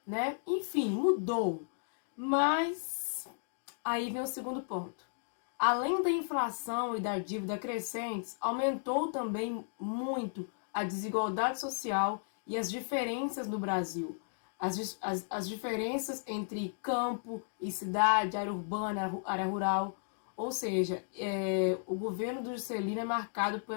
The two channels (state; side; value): silent; right; digital silence